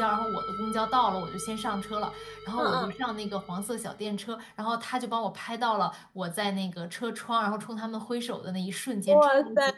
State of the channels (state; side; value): identical; both; correlation 1.00